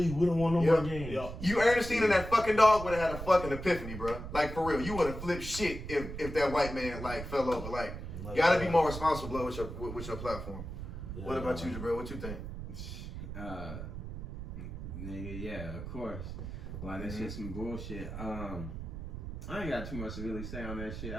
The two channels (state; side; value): noise; right; rumble, 8 dB below the sound